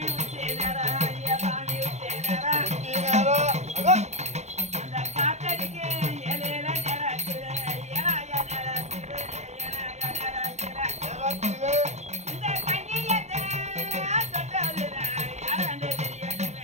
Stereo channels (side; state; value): left; late; 0.33 ms